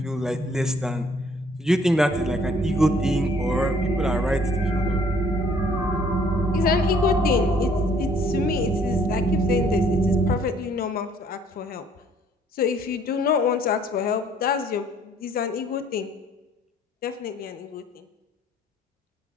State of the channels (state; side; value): normal; both; correlation 0.60